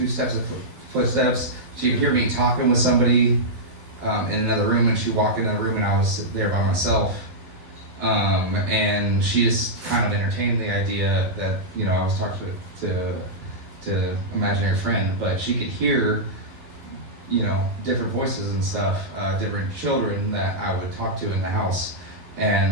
steps of footsteps. She could hear me talking with somebody in another room, and she'd walk into the room and I was there by myself. And she just kind of entertained the idea that, I was talking to imaginary friend, but she could hear, different voices and stuff, different children that I would talk to in the house.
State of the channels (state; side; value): late; left; 11 ms